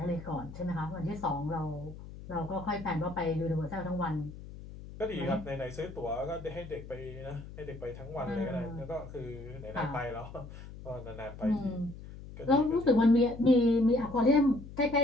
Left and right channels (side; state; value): left; noise; hum, 14 dB below the sound